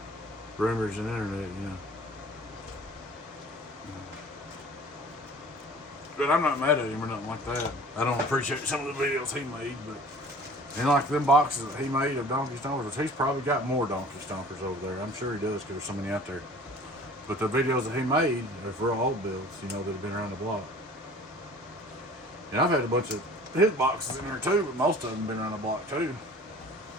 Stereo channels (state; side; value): normal; both; correlation 0.46